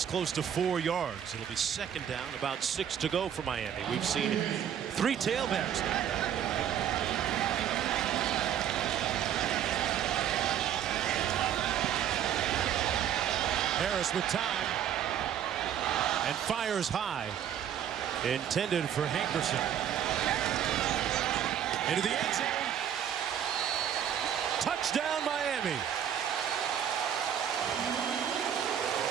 close to 4 yards. It'll be 2nd down, about 6 to go for Miami. We've seen 3 tailbacks now. Harris with time and fires high. Intended for Hankerson. Into the end zone. Touchdown, Miami.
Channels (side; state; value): left; quieter; 9.6 dB